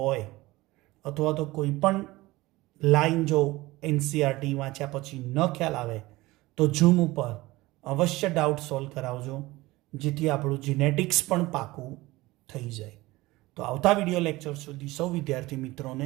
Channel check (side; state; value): left; quieter; 19.7 dB